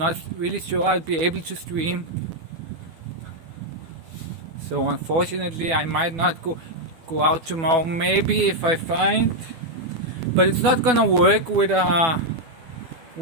really sure I'll be able to stream. So unfortunately I might not go out tomorrow. Maybe if I find, but it's not gonna work with an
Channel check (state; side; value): late; left; 12 ms